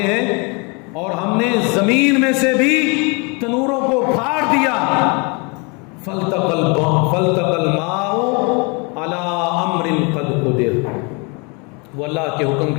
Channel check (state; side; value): quieter; right; 31.4 dB